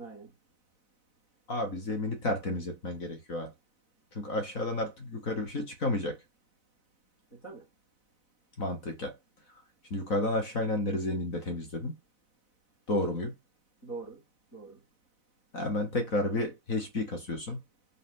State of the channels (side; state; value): right; late; 4.0 ms